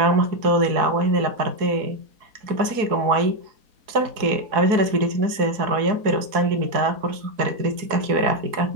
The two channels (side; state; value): left; late; 4.7 ms